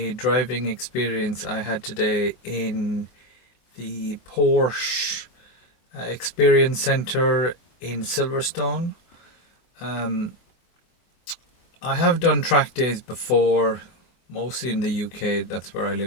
driving experience I had today in the Porsche Experience Center in Silverstone. I have done track days before, mostly in the UK, that's where I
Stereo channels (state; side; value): late; right; 24 ms